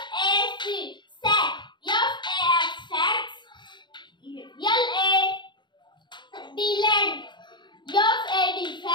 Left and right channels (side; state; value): right; late; 0.22 ms